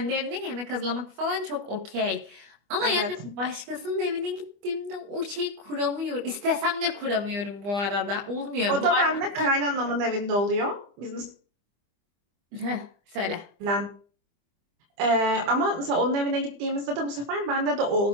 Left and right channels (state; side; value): late; left; 25 ms